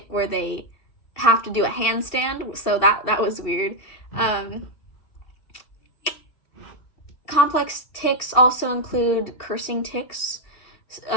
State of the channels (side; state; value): right; late; 2.7 ms